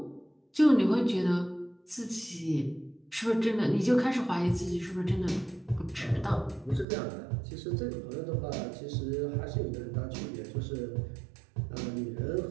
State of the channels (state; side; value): drops out; left; at 6.9 s